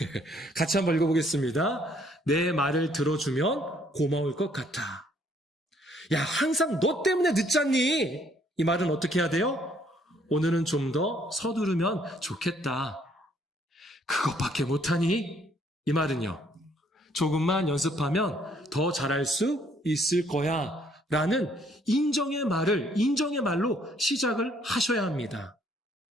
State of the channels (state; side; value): normal; both; correlation 0.65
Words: 같이 한번 읽어보겠습니다. 내 말을 들어주면 고마울 것 같아. 야, 항상 너 때문에 늦잖니? 이 말은 어떻게 해야 돼요? 오늘은 좀 더 서두르면 좋겠다. 그것밖에 못하니? 이 말은요. 조금만 연습하면 더 잘할 수 있을 거야. 라는 인정의 말로 시작을 하셔야 합니다.